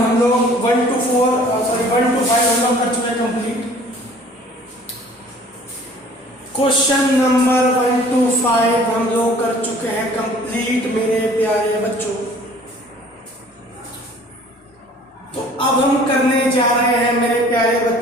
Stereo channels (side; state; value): both; normal; correlation 0.51